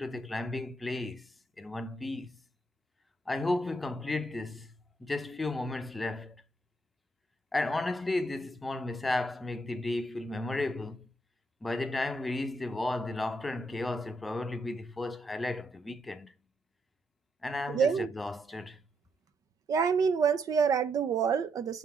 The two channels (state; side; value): normal; both; correlation 0.77